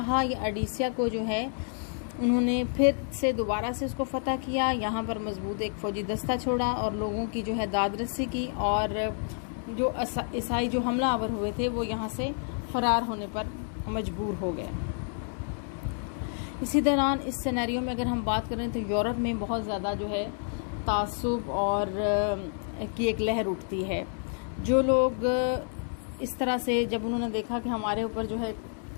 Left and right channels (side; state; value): right; silent; 57 dB below the other